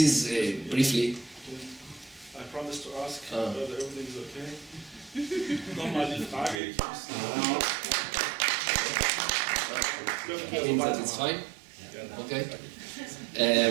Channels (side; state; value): left; drops out; at 6.6 s